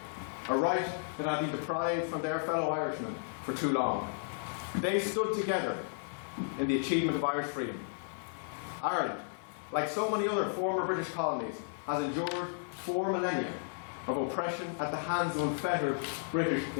a right that had been deprived from their fellow Irishmen for too long. They stood together in the achievement of Irish freedom. Ireland, like so many other former British colonies, has endured 4 millennia of oppression at the hands of unfettered British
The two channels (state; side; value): silent; right; digital silence